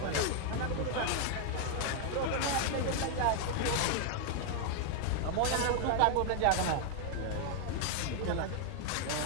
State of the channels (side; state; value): both; different; correlation 0.00